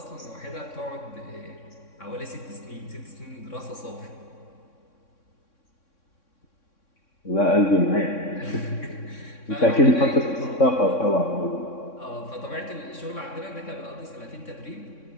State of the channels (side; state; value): right; late; 3.6 ms